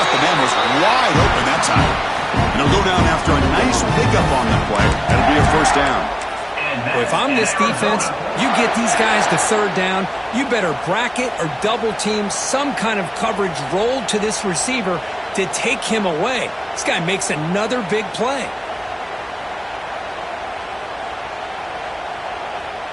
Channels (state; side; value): identical; both; correlation 1.00